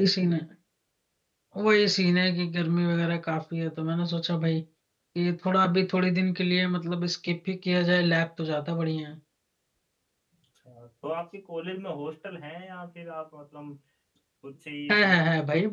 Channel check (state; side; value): identical; both; correlation 1.00